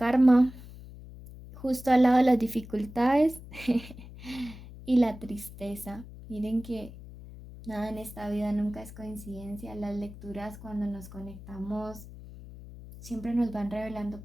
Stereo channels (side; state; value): left; noise; hum, 15 dB below the sound